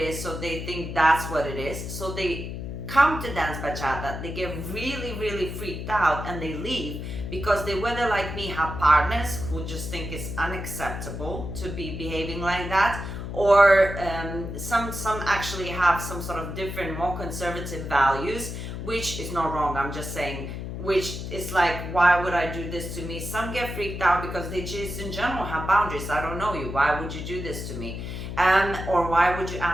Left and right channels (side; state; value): left; noise; hum, 6 dB below the sound